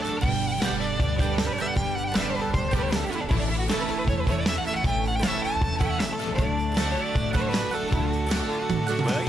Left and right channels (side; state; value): both; normal; correlation 0.84